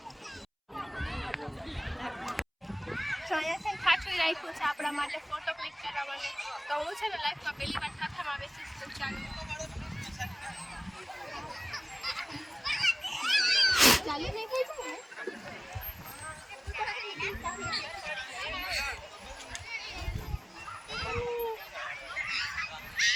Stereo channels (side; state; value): both; identical; correlation 1.00